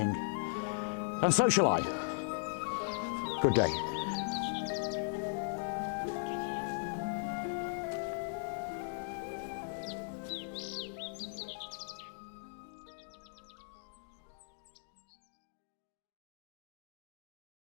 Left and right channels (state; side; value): silent; right; digital silence